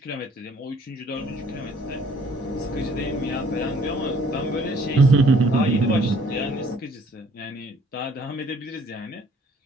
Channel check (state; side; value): normal; both; correlation 0.59